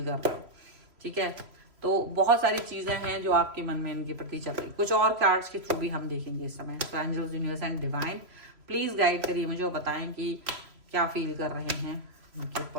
कर रहे हो, ठीक है। तो बहुत सारी चीजें हैं जो आपके मन में इनके प्रति चल रही। कुछ और कार्ड्स के थ्रू भी हम देखेंगे इस समय। So angels, universe and divine please guide करिए मुझे और बताएं कि क्या फील कर रहे हैं इनके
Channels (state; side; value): late; left; 3.0 ms